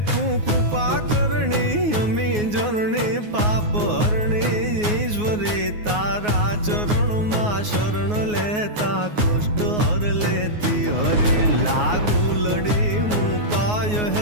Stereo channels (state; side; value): late; left; 9.5 ms